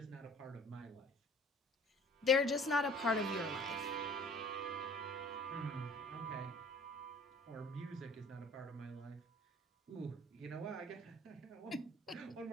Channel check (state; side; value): normal; both; correlation 0.50